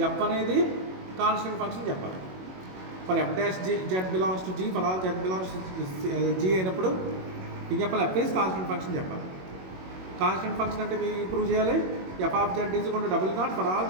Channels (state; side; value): late; left; 21 ms